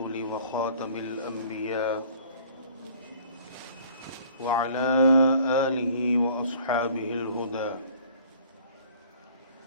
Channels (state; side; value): inverted; both; correlation -0.53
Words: وخاتم الأنبياء وعلى آله وأصحابه الهدى.